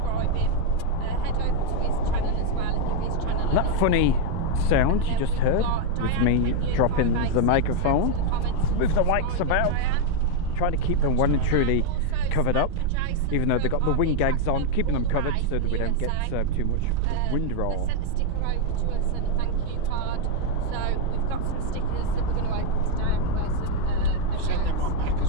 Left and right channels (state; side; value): different; both; correlation 0.01